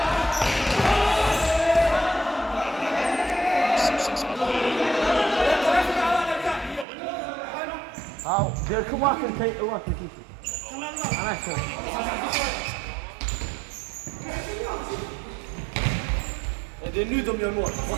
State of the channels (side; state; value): left; drops out; at 6.9 s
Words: Ja, det kommer att ta ett år till. Annars så. Det är nu de gör mål.